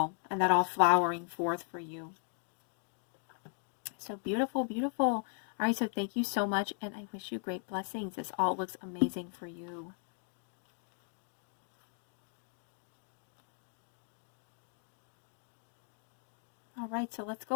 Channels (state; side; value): silent; right; 53 dB below the other